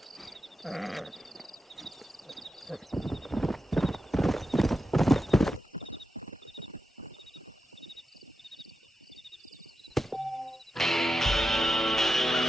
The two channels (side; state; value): both; normal; correlation 0.89